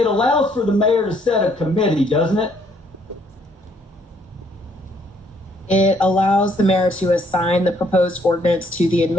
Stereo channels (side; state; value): both; normal; correlation 0.67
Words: allows for the mayor to set a committee, doesn't it? It allows the mayor to assign the proposed ordinance to the